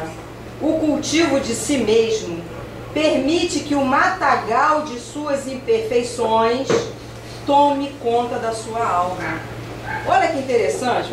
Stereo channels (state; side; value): identical; both; correlation 1.00